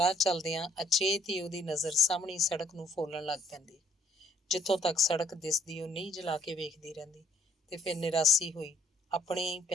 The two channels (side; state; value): both; normal; correlation 0.63